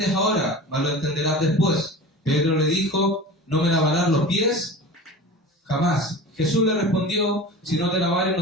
ahora, mas lo entenderás después. Pedro le dijo, ¿no me lavarás los pies? Jamás. Jesús le respondió, si no te lavares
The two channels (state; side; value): normal; both; correlation 0.34